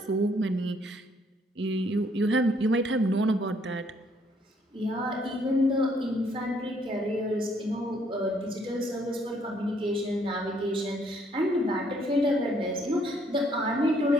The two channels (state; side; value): normal; both; correlation 0.67